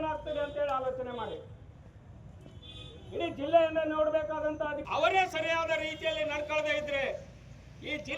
ಅಂತ ಹೇಳಿ ಆಲೋಚನೆ ಮಾಡಿ. ಇಡೀ ಜಿಲ್ಲೆಯನ್ನ ನೋಡಬೇಕಾದಂತ ಅವರೇ ಸರಿಯಾದ ರೀತಿಯಲ್ಲಿ ನಡ್ಕೊಳ್ಳದೆ ಇದ್ರೆ ಈ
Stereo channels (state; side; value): identical; both; correlation 1.00